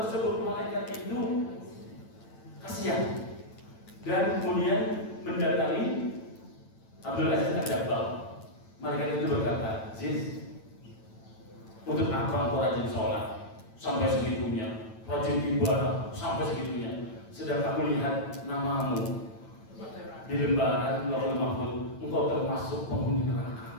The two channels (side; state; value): right; late; 9.0 ms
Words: malaikat itu kasihan dan kemudian mendatangi Abdul Aziz Ad-Dabbagh. Malaikat itu berkata, Aziz, untuk apa engkau rajin sholat sampai segitunya, rajin ibadah sampai segitunya, sedang aku lihat namamu di lembaran Lauhul Mahfuz, engkau termasuk penghuni